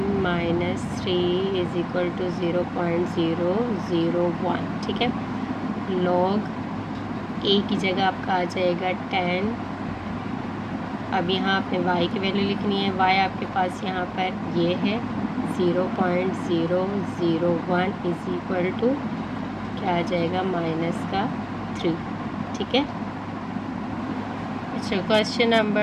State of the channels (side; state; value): both; identical; correlation 1.00